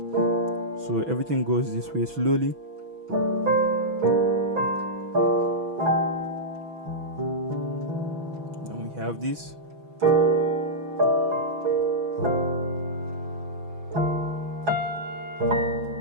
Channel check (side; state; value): left; late; 6.1 ms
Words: So everything goes this way slowly. Then we have this.